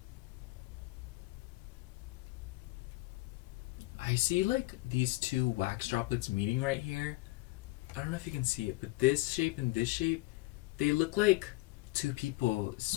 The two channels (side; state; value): right; quieter; 21.6 dB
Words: I see like these two wax droplets meeting right here. I don't know if you can see it, but this shape and this shape, they look like two people